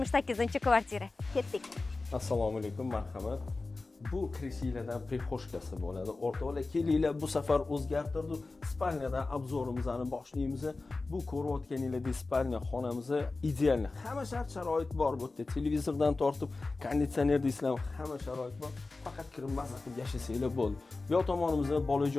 Ketdik. Assalomu alaykum, marhamat. Bu krishiylardan prixoshkasi bo'ladi. O'rtoqlar, kelinglar, bu safar o'zgartirdik. Spalniyadan obzorimizni boshlaymiz. Bu ko'rayotganinglardek spalniya xonamiz ideal. Hamma shart-sharoit bor bu yerda. Televizordan tortib, konditsioner deysizlar, hamma sharoit bor. Faqat kirib maza qilib yashasanglar bo'ldi. Bu yoq tomonimizda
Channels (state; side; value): quieter; right; 3.5 dB